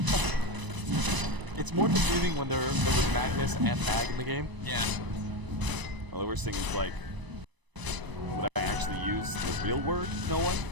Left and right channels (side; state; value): left; late; 1.0 ms